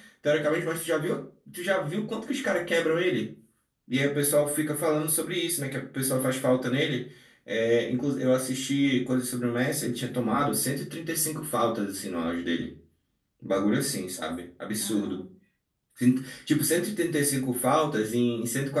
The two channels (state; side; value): identical; both; correlation 1.00